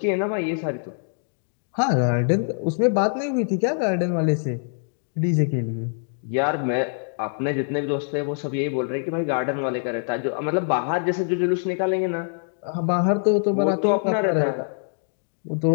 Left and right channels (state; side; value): silent; right; digital silence